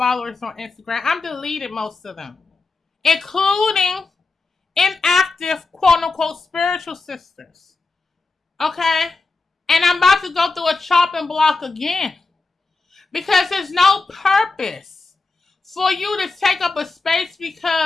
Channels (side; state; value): right; quieter; 3.8 dB